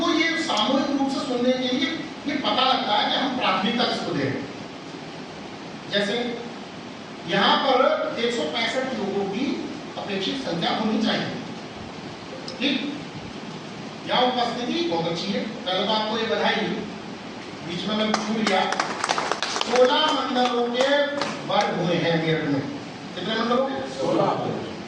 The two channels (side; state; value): both; identical; correlation 1.00